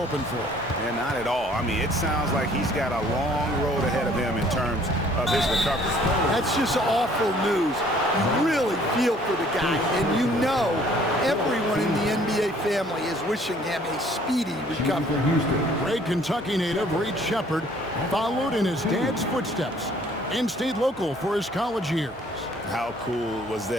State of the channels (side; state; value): both; normal; correlation 0.58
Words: for. And not at all. I mean, it sounds like he's got a long road ahead of him in terms of his recovery. That's just awful news. You really feel for the guy, and you know everyone in the NBA family is wishing him a speedy recovery. Great Kentucky native Reed Sheppard followed in his dad's footsteps and stayed local for his college years. How cool was